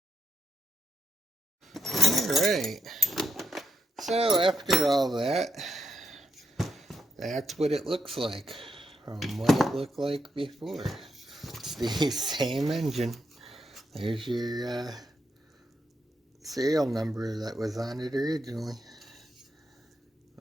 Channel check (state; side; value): normal; both; correlation 0.81